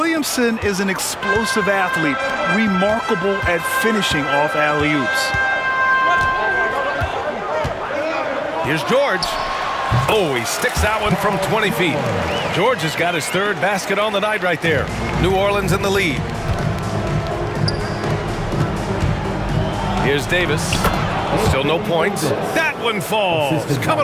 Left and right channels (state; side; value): identical; both; correlation 1.00